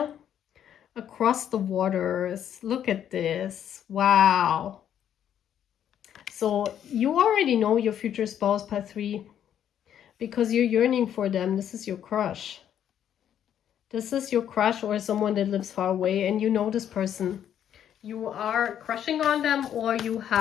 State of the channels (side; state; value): right; quieter; 9.8 dB